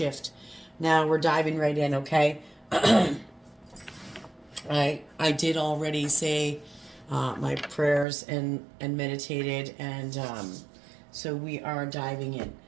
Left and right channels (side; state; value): left; drops out; at 8.1 s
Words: Now we're diving right in, okay? I did already say my prayers and meditated, and so we are diving in.